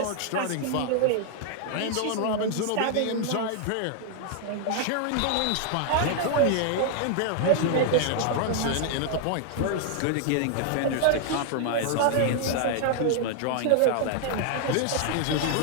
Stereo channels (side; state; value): both; different; correlation 0.00